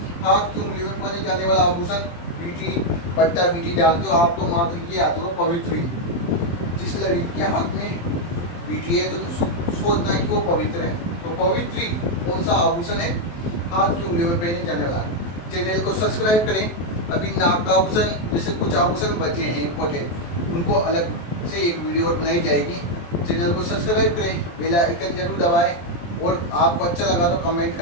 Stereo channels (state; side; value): late; right; 23 ms